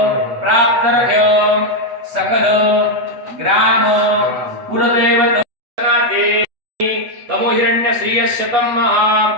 प्राप्तर्घ्य सकल ग्राम कुलदेवतानाते तमो हिरण्य श्रीयशतं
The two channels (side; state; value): left; late; 8.5 ms